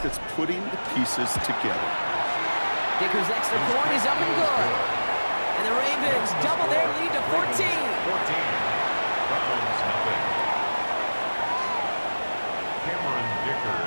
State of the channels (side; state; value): both; inverted; correlation -1.00